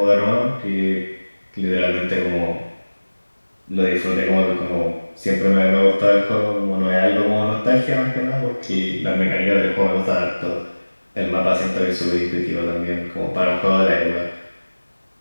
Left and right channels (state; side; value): inverted; both; correlation -1.00